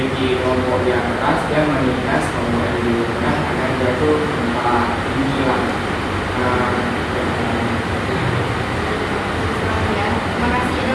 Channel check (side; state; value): both; identical; correlation 1.00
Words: kelompok yang keras, dia menindas kelompok yang lebih rendah agar dia tuh tempat tinggi lah. Ya, terima kasih. Ada